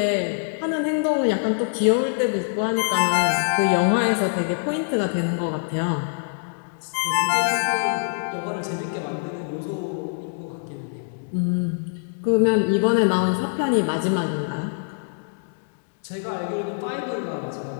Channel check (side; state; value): right; silent; digital silence